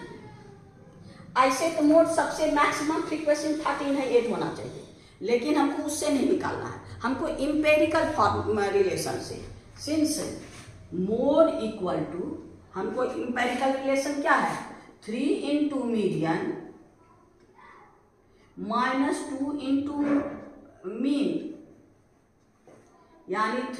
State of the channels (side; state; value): both; identical; correlation 1.00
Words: ऐसे तो मोड सबसे मैक्सिमम फ्रीक्वेंसी 13 है, 8 होना चाहिए, लेकिन हमको उससे नहीं निकालना है, हमको इंपेरिकल रिलेशन से। सिंस मोड इक्वल टू, हमको इंपेरिकल रिलेशन क्या है? 3 into median minus 2 into mean, यानी